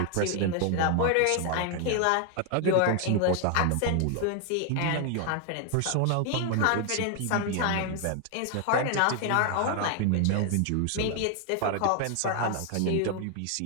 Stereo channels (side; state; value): both; different; correlation 0.00